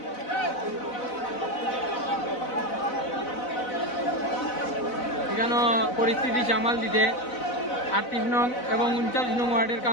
এখানে পরিস্থিতি সামাল দিতে 38 নং এবং 39 নং ওয়ার্ডের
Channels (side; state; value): right; late; 4.0 ms